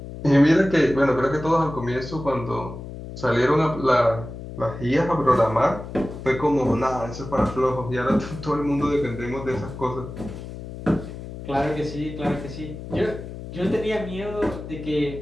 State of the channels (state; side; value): noise; left; hum, 11 dB below the sound